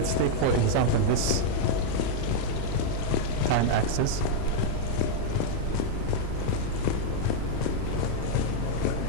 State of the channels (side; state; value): both; different; correlation -0.01